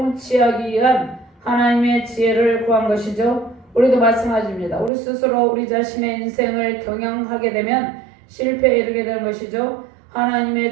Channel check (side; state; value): left; drops out; at 4.9 s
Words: 위한 하나님의 지혜를 구한 것이죠. 우리도 마찬가지입니다. 우리 스스로 우리 자신의 인생을 경영하게 되면 실패에 이르게 되는 것이죠.